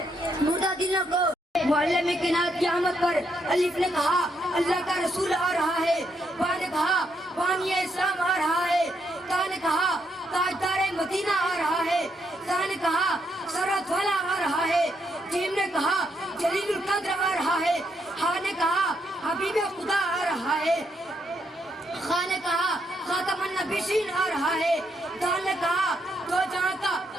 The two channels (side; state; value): both; normal; correlation 0.77